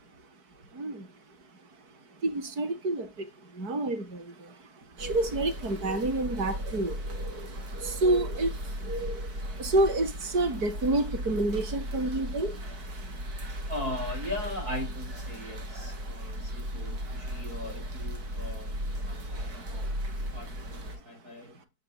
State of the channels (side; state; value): left; late; 4.6 ms